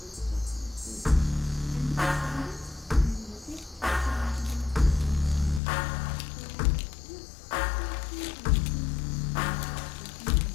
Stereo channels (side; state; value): right; drops out; at 5.6 s